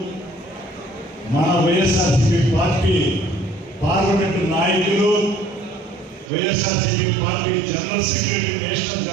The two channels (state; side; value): drops out; left; at 6.3 s